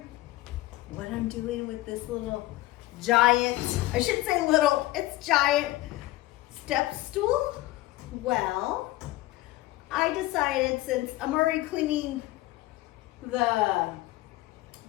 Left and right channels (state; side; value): quieter; right; 17.5 dB